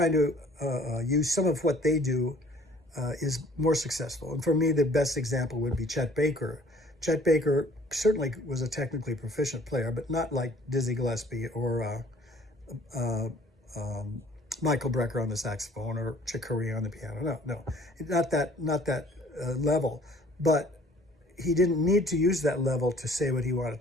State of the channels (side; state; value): both; normal; correlation 0.54